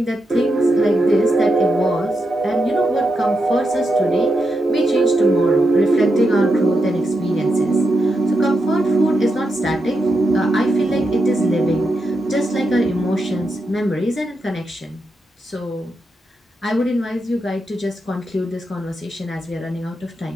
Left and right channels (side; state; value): both; normal; correlation 0.86